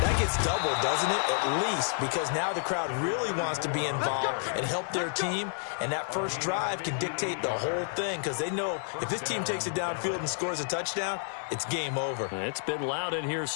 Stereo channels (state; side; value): silent; right; digital silence